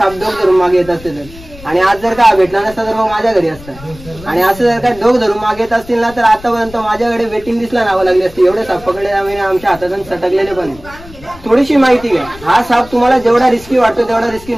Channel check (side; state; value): left; noise; rumble, 19 dB below the sound